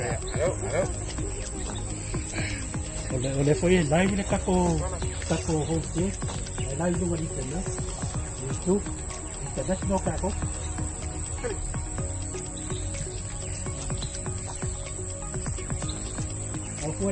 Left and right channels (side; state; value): both; identical; correlation 1.00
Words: Oleh foi live le kako host ye live lu di sana itu internet no kako aku